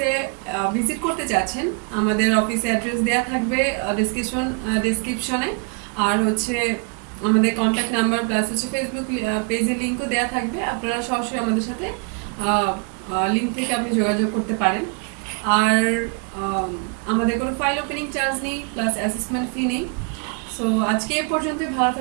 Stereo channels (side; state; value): left; quieter; 37.1 dB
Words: ভিজিট করতে চাচ্ছেন, আমাদের অফিসে অ্যাড্রেস দেওয়া থাকবে ডিসক্রিপশনে, আর হচ্ছে আমাদের কন্ট্যাক্ট নাম্বার প্লাস হচ্ছে ফেসবুক পেজের লিঙ্কও দেওয়া থাকবে। আপনারা সরাসরি আমাদের সাথে লিঙ্ক থেকে আপনি যোগাযোগ করতে পারেন। আর আম, আমাদের কোনো ফাইল ওপেনিং চার্জ নেই, প্লাস অ্যাসেসমেন্ট ফি নেই। সো আজকে এ পর্যন্ত, ভালো